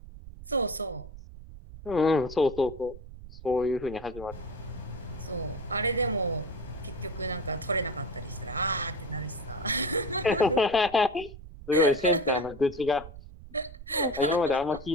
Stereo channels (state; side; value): noise; right; rumble, 15 dB below the sound